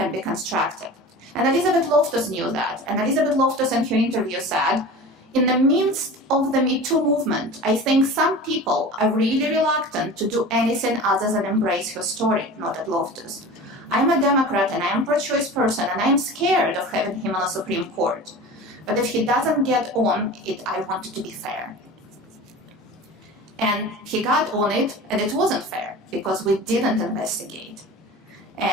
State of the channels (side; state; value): both; normal; correlation 0.36